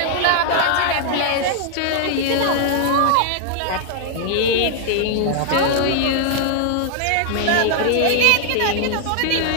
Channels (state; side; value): different; both; correlation -0.01